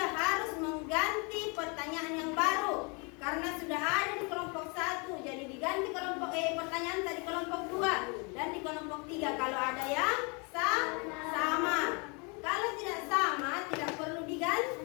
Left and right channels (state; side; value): quieter; right; 32.4 dB